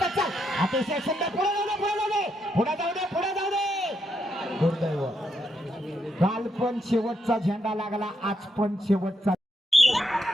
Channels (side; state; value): both; normal; correlation 0.79